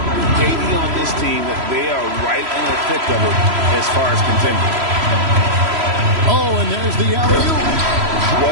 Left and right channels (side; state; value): left; late; 3.0 ms